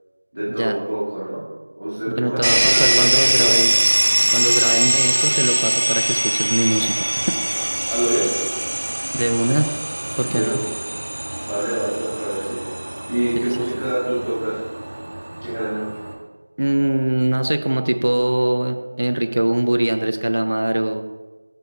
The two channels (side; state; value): both; inverted; correlation -1.00